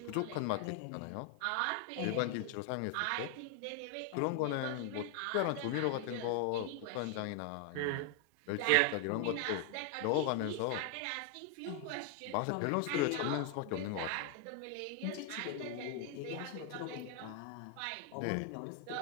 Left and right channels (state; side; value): different; both; correlation 0.00